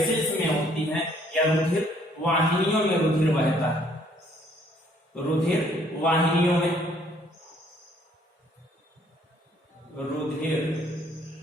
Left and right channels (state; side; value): normal; both; correlation 0.63